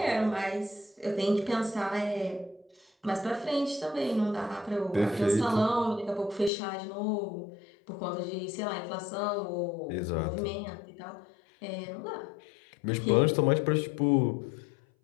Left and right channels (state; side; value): drops out; right; at 6.5 s